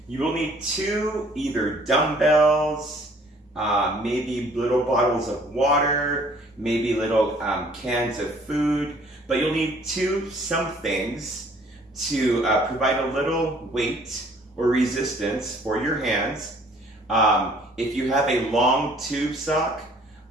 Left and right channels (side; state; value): both; normal; correlation 0.57